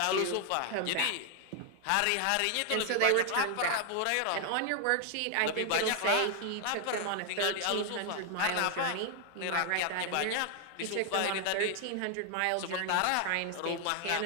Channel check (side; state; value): both; different; correlation 0.00